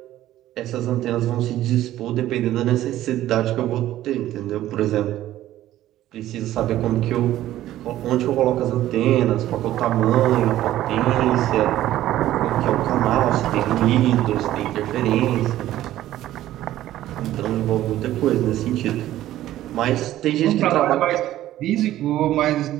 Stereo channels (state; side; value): quieter; left; 13.8 dB